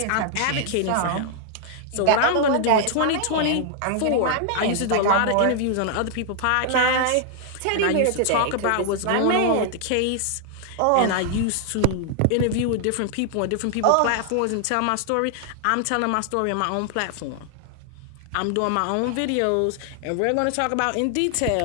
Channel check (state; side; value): different; both; correlation 0.00